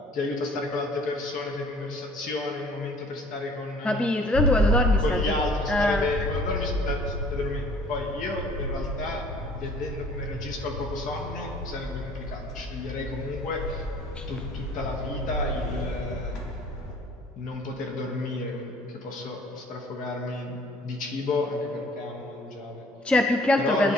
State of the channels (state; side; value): normal; both; correlation 0.53